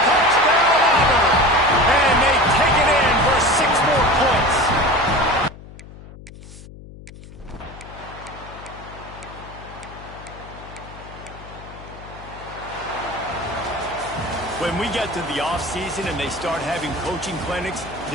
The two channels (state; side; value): noise; left; hum, 17 dB below the sound